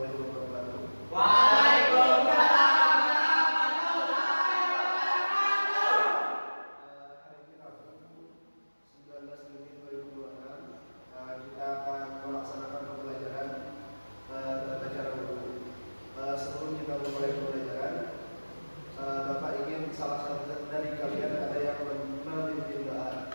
wabarakatuh. Waalaikumsalam warahmatullahi wabarakatuh. Hari ini Rabu 19 Juni 2026. Kita akan melaksanakan pembelajaran tata cara wudhu. Sebelum kita memulai pembelajaran, Bapak ingin salah satu dari kalian ada yang memimpin doa.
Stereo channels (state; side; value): inverted; both; correlation -1.00